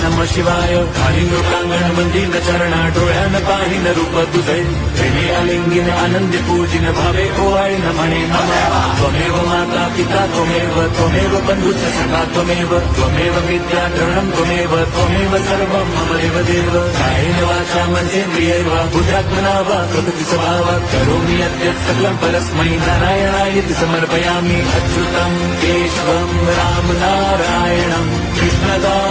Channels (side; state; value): both; identical; correlation 1.00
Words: नमः शिवाय। कालिङ्गप्राङ्गणमन्दिरचरण डोळ्यान पाहिन रूप तुझे प्रेमे अलिंगिन आनंदी पूजिन भावे ओवाळी म्हणे नमः। त्वमेव माता पिता त्वमेव बन्धुश्च सखा त्वमेव विद्या द्रढं त्वमेव सर्वं मम देवदेव। कायेन वाचा मनसेन्द्रियैर् वा बुद्ध्यात्मना वा प्रकृति स्वभावात् करोमि यद्यत् सकलं परस्मै नारायणायेति समर्पयामि। अच्युतं केशवं राम नारायणं